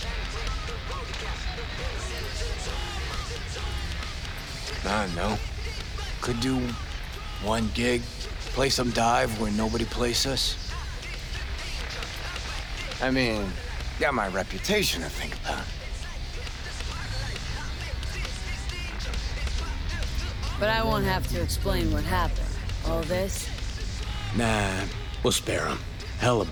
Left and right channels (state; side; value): identical; both; correlation 1.00